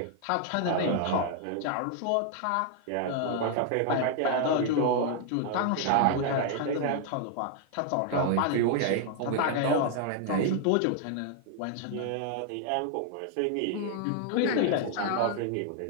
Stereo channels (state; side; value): different; both; correlation 0.00